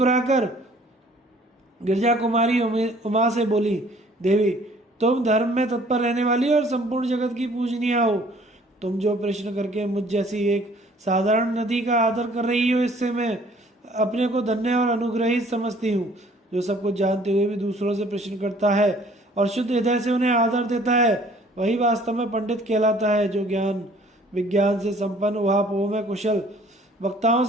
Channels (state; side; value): normal; both; correlation 0.56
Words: गिरजा कुमारी उमा से बोली, देवी, तुम धर्म में तत्पर रहने वाली और संपूर्ण जगत की पूजनीय हो। तुम जो प्रश्न करके मुझ जैसी एक साधारण नदी का आदर कर रही हो, इससे मैं अपने को धन्य और अनुग्रहित समझती हूँ। जो सब कुछ जानते हुए भी दूसरों से प्रश्न करता है और शुद्ध हृदय से उन्हें आदर देता है, वही वास्तव में पंडित कहलाता है। जो ज्ञान विज्ञान से संपन्न उहापोह में कुशल वक्ताओं